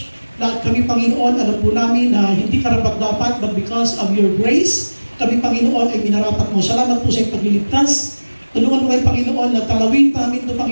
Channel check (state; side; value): inverted; both; correlation -1.00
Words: Lahat kami, Panginoon, alam po namin na hindi karapat-dapat, but because of your grace, kami, Panginoon, ay minarapat mo. Salamat po sa iyong pagliligtas. Tulungan mo kayo, Panginoon, na talawin namin ito,